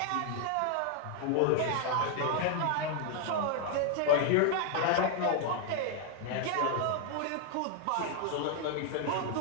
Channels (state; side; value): different; both; correlation 0.00